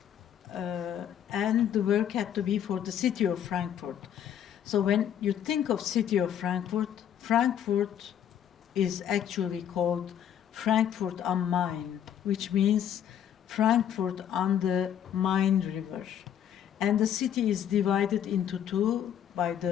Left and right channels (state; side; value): quieter; right; 9.8 dB